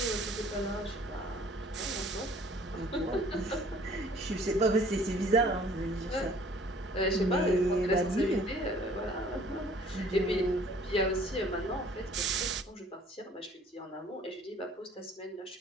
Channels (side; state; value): both; normal; correlation 0.55